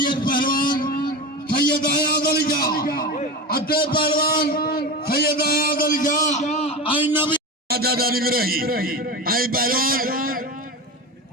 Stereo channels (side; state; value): both; normal; correlation 0.25